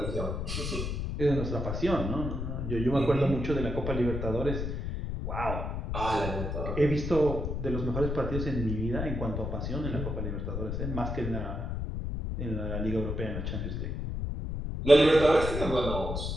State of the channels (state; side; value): noise; left; rumble, 3 dB below the sound